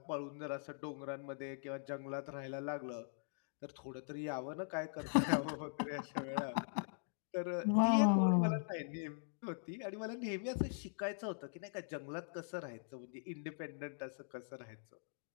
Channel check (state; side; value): silent; right; digital silence